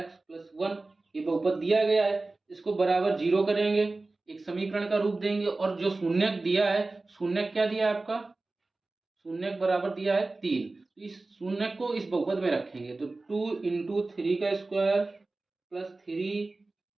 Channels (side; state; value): left; quieter; 3.3 dB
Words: प्लस 1। ये बहुपद दिया गया है, इसको बराबर 0 करेंगे, एक समीकरण का रूप देंगे। और जो शून्यक दिया है, शून्यक क्या दिया है आपका, शून्यक बराबर दिया है 3। तो इस शून्यक को इस बहुपद में रखेंगे। तो 2 इंटू 3 का स्क्वायर प्लस 3